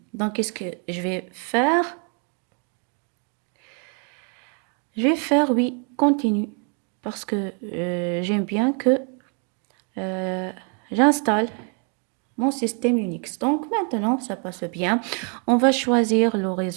Donc, qu'est-ce que je vais faire? Je vais faire oui, continue, parce que j'aime bien que euh, j'installe mon système Unix. Donc, maintenant, ça passe bien. On va choisir le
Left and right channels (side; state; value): left; quieter; 39.4 dB